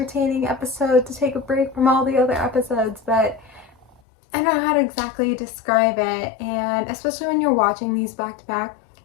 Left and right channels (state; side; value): drops out; right; at 4.0 s